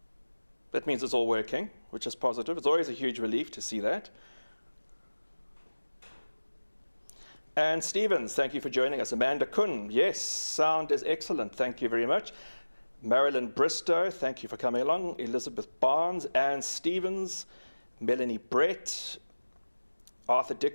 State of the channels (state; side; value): inverted; both; correlation -1.00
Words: That means it's all working, which is positive. It's always a huge relief to see that. And Stevens, thank you for joining us. Amanda Kuhn, yes, sound is excellent. Thank you very much. Marilyn Bristow, thank you for coming along. Elizabeth Barnes, Anne Stevens, Melanie Brett, Arthur